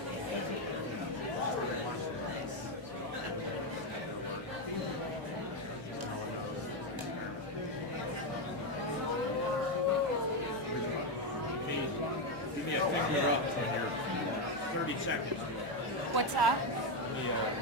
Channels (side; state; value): both; normal; correlation 0.07